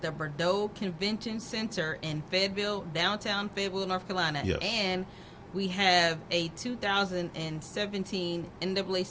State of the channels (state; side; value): identical; both; correlation 1.00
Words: the Bordeaux Convention Center in Fayetteville, downtown Fayetteville, North Carolina. Yes. And we have a 2017